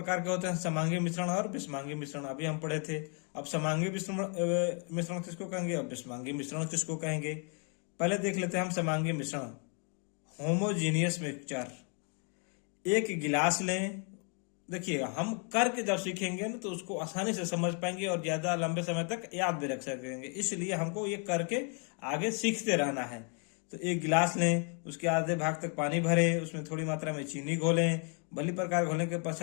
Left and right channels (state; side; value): quieter; right; 39.7 dB